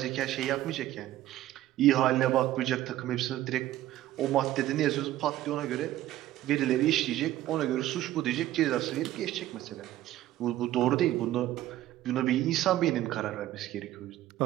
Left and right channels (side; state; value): left; quieter; 14.3 dB